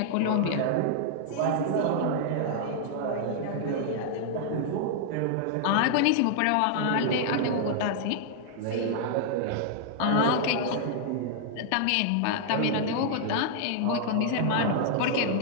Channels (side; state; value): both; different; correlation -0.01